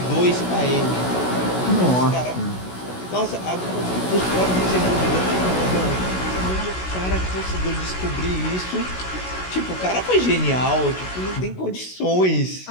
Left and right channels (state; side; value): late; right; 16 ms